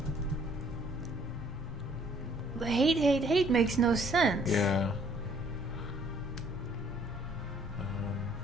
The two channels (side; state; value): both; normal; correlation 0.61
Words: The hate, hate, hate makes no sense. Yeah.